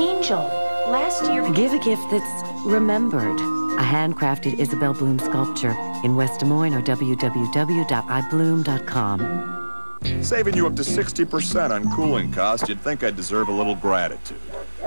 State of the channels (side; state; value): both; inverted; correlation -1.00